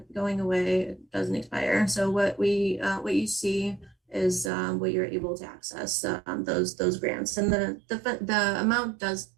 going away, it doesn't expire. So what you see is what you're able to access, those grants. And the amount does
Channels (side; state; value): left; drops out; at 4.5 s